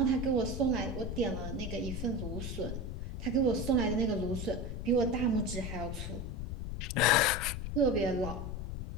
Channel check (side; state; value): left; noise; rumble, 5 dB below the sound